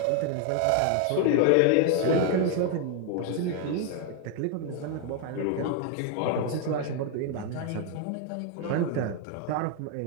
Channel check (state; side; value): different; both; correlation 0.01